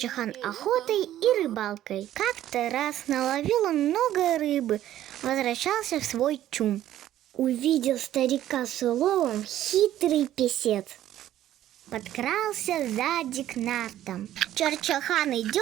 охотой и рыбалкой. Как-то раз наловил он много рыбы, возвращался в свой чум. Увидел старика с уловом хитрый песец. Подкрался сзади к нартам. Чарчахан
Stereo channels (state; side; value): quieter; left; 12.7 dB